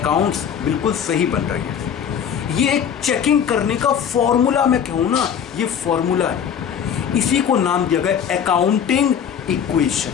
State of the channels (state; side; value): quieter; right; 8.1 dB